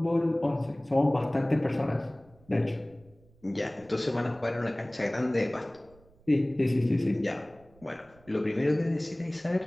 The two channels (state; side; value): noise; right; rumble, 28 dB below the sound